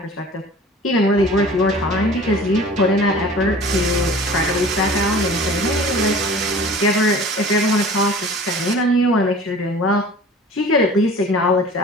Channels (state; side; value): normal; both; correlation 0.43